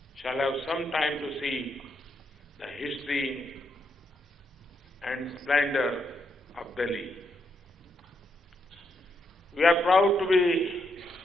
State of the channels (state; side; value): normal; both; correlation 0.79